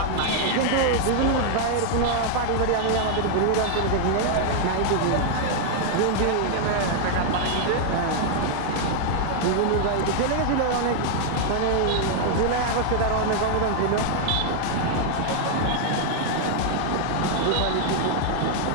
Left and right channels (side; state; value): both; different; correlation 0.00